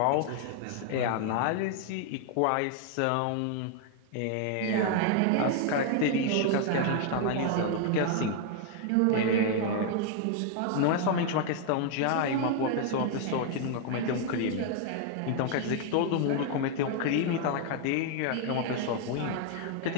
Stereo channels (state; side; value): different; both; correlation 0.00